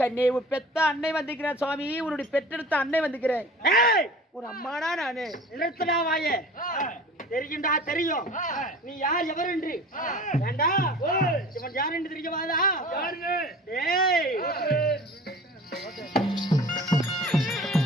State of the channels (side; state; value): both; normal; correlation 0.42